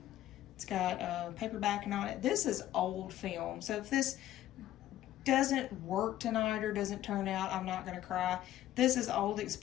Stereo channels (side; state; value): right; quieter; 13.4 dB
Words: It's got paper backing on it. This is old film. So if this doesn't work tonight or doesn't turn out, I'm not going to cry. This is old